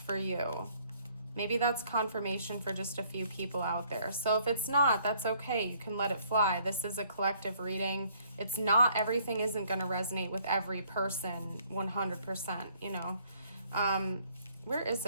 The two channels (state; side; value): inverted; both; correlation -0.63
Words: you. Maybe that's confirmation for just a few people out there. So if it's not, that's okay. You can let it fly. This is a collective reading. It's not, everything isn't going to resonate with every person 100%, you know. Where is